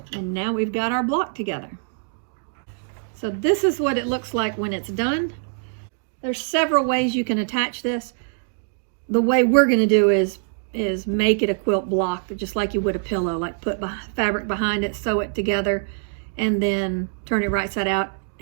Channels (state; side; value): silent; left; digital silence